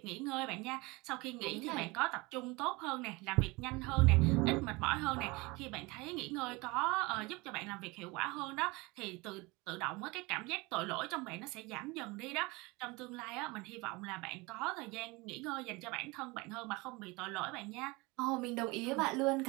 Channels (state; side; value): quieter; left; 24.4 dB